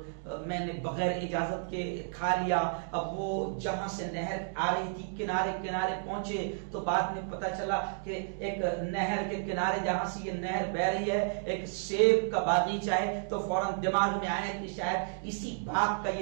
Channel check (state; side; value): silent; left; digital silence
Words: میں نے بغیر اجازت کے کھا لیا۔ اب وہ جہاں سے نہر آ رہی تھی کنارے کنارے پہنچے تو بعد میں پتا چلا کہ ایک نہر کے کنارے جہاں سے یہ نہر بہ رہی ہے ایک سیب کا باغیچہ ہے، تو فوراً دماغ میں آیا کہ شاید اسی باغ کا